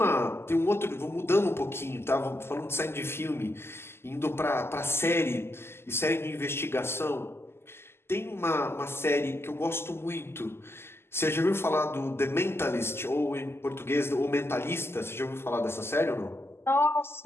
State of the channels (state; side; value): late; right; 0.12 ms